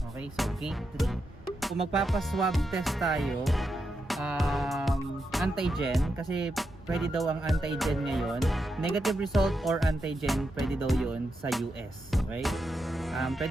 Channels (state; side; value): normal; both; correlation 0.85